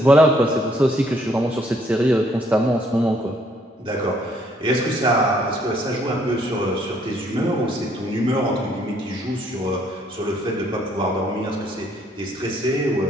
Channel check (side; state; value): both; normal; correlation 0.66